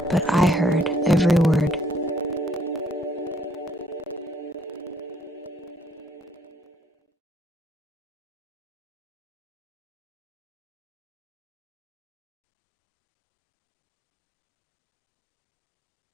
But I heard every word.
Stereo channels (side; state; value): both; normal; correlation 0.67